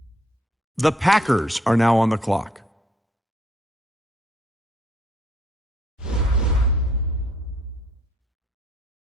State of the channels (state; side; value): normal; both; correlation 0.66